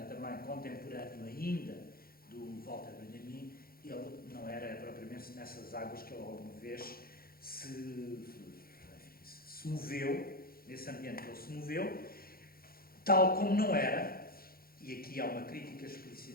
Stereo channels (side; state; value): right; late; 0.43 ms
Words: também contemporâneo ainda do Walter Benjamin, ele não era propriamente nessas águas que ele alguma vez se moveu, nesse ambiente que ele se moveu, tal como não era, e aqui há uma crítica